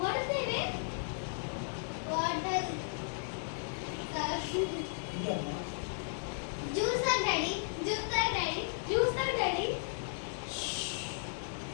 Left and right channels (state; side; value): silent; right; digital silence